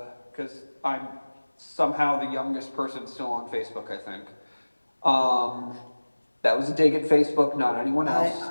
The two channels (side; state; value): both; inverted; correlation -1.00